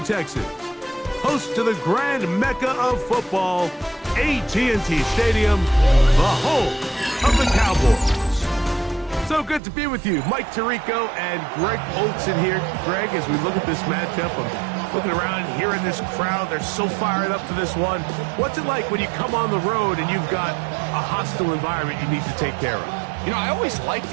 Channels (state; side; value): drops out; left; at 9.6 s